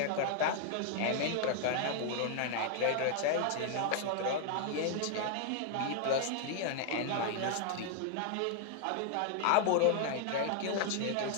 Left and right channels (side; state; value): both; different; correlation 0.00